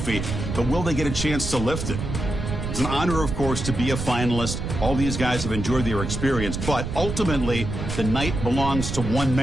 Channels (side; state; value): right; noise; rumble, 4 dB below the sound